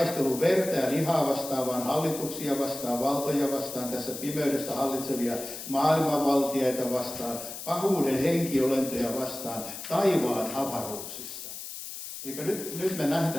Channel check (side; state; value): left; noise; hiss, 9 dB below the sound